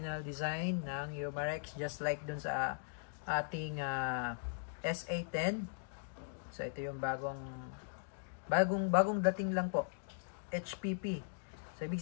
design ng Umarex, just like dun sa ating SA10. So ito yung bagong dating lang po. HPP. So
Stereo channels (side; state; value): right; silent; digital silence